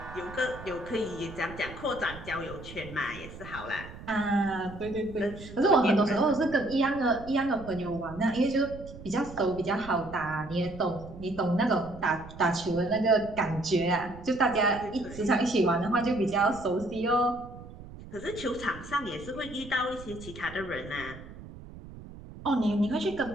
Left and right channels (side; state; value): right; noise; rumble, 15 dB below the sound